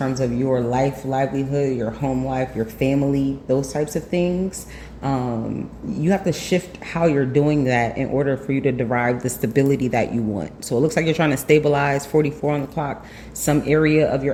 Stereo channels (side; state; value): both; identical; correlation 1.00